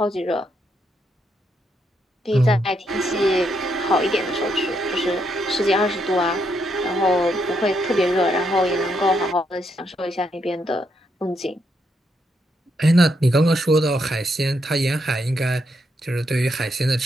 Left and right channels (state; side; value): normal; both; correlation 0.78